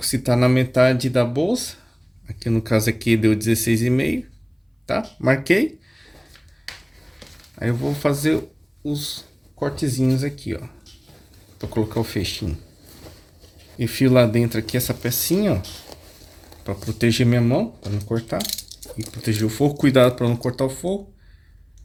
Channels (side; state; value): both; identical; correlation 1.00